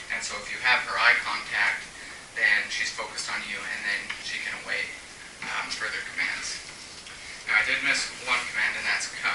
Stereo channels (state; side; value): identical; both; correlation 1.00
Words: And so if you have her eye contact, then she's focused on you, and then she can await further commands. Now I did miss one command, and that's